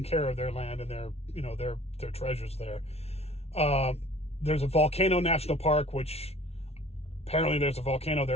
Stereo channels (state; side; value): late; right; 0.31 ms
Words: care of their land and their treasures there. There's a volcano national park, which apparently there's a volcano